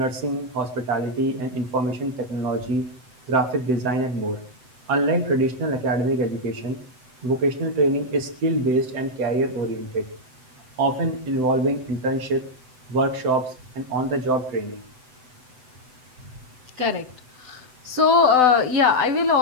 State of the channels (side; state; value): left; late; 7.9 ms